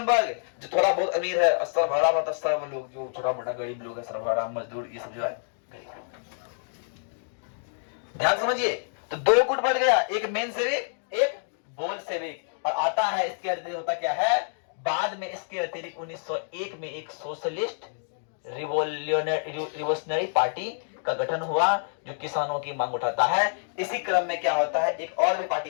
वर्ग जो थोड़ा बहुत अमीर है, सर्वहारा मतलब सर्व लोग जो छोटा मोटा गरीब लोग है, सर्वहारा मजदूर, ये सब जो है गरीब लोग। ध्यान समझिए, तो दो गुट बढ़ गया, एक मेनशेविक, एक बोल्शेविक। और आता है इसके अतिरिक्त होता क्या है, बाद में इसके अतिरिक्त 1901 में एक सोशलिस्ट रिवोल्यूशनरी पार्टी का गठन हुआ जो किसानों की मांग उठाता है। इसी क्रम में क्या होता है, एक और भी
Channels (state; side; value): silent; right; digital silence